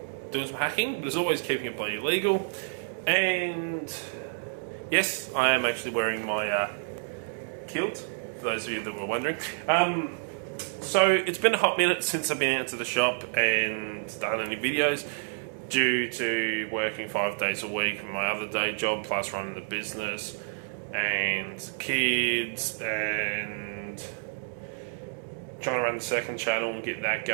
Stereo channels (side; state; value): left; silent; digital silence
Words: some hacking, but as always keeping it bloody legal. And yes, I am actually wearing my kilt, for those of you that were wondering. So it's been a hot minute since I've been out to the shop and done any videos, due to working 5 days a week from my other day job, plus running the business and kids and trying to run the second channel and get that